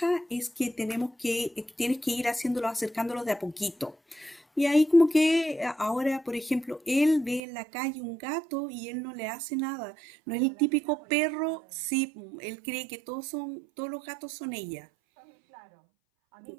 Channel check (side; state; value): left; drops out; at 7.4 s